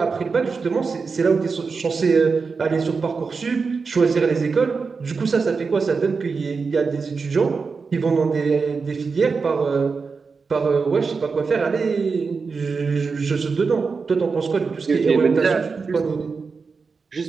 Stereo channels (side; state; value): left; quieter; 4.9 dB